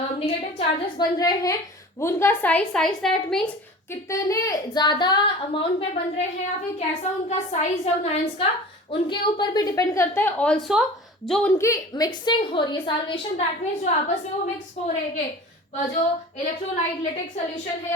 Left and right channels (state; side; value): normal; both; correlation 0.39